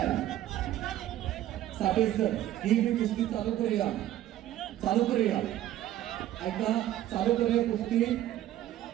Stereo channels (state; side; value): quieter; left; 13.2 dB